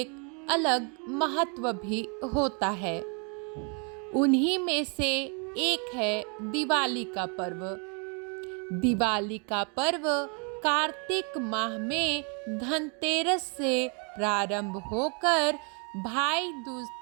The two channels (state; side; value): quieter; left; 36.8 dB